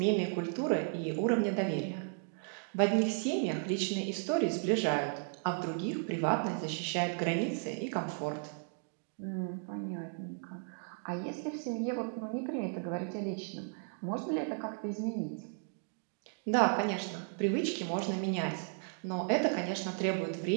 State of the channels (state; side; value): silent; left; 55 dB below the other